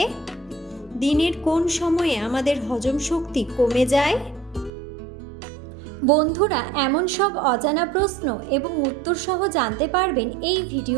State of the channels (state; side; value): drops out; left; at 4.7 s